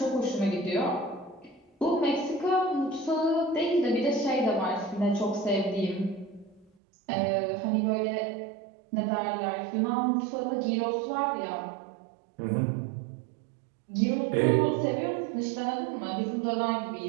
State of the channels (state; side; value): drops out; left; at 6.7 s